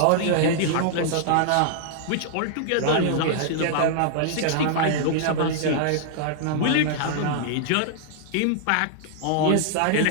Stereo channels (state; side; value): different; both; correlation -0.01